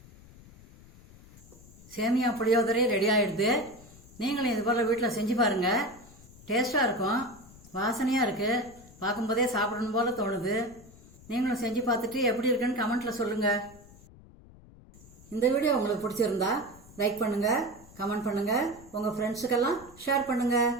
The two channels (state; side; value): noise; left; rumble, 22 dB below the sound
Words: சேமியா புளியோதரை ரெடி ஆகிடுது. நீங்களும் இது போல் வீட்டில் செஞ்சு பாருங்கள். டேஸ்ட்டாக இருக்கும். வாசனையாக இருக்குது. பார்க்கும்போதே சாப்பிடணும் போல் தோணுது. நீங்களும் செஞ்சு பார்த்துட்டு எப்படி இருக்குன்னு கமெண்ட்டில் சொல்லுங்கள். இந்த வீடியோ உங்களுக்கு பிடிச்சிருந்தா லைக் பண்ணுங்கள், கமெண்ட் பண்ணுங்கள், உங்கள் ஃப்ரெண்ட்ஸுக்கெல்லாம் ஷேர் பண்ணுங்கள்.